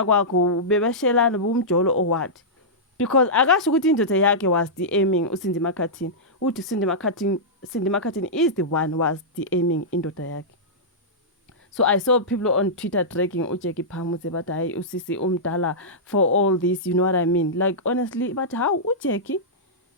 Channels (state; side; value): normal; both; correlation -0.13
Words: kwakho bebeshelana bumjolo or what? Because akasho ukuthi indoda yakhe was DMing uCindy McCartin. Uthi Cindy McCartin is the one was DMing indoda yakhe. So I saw people on Twitter dragging Ujeki Phamuse, but I usisi umdala for all this, you know what I mean? Like, honestly, but how Ujeki?